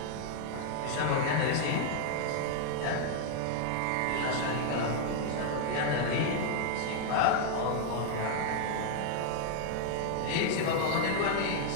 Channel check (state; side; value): different; both; correlation 0.00